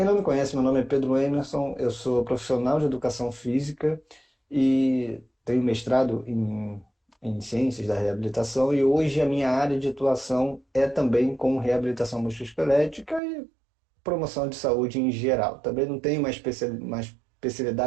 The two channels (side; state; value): left; drops out; at 13.2 s